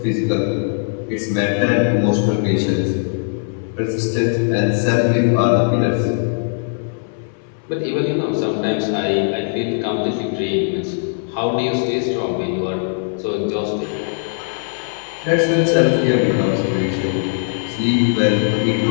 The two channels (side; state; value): right; silent; 63 dB below the other